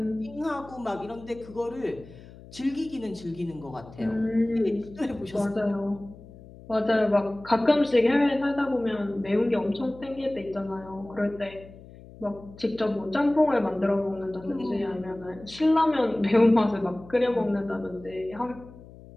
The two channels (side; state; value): left; noise; hum, 19 dB below the sound